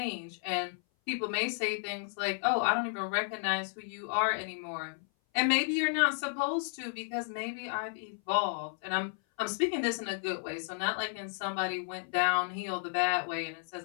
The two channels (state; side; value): silent; right; 56 dB below the other